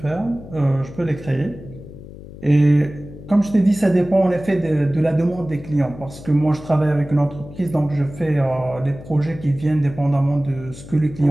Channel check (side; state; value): left; noise; hum, 15 dB below the sound